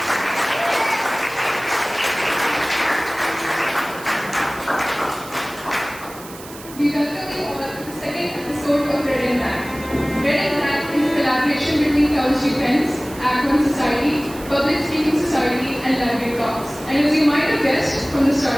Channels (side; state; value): right; noise; hiss, 17 dB below the sound